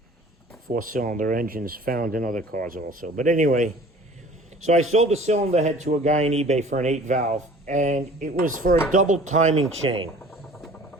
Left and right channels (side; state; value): both; normal; correlation 0.48